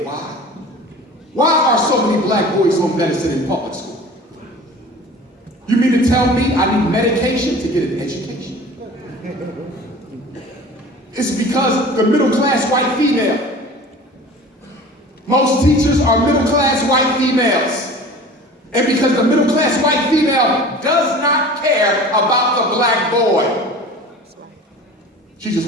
why? Why are so many black boys on medicine in public school? You mean to tell me I need medication to get an education? It's because the middle-class white female. Most teachers are middle-class white females. And because the middle-class white female does not care about the black boy, she just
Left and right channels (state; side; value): normal; both; correlation 0.41